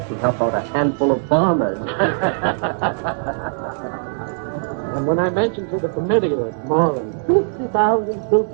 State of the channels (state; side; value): silent; left; digital silence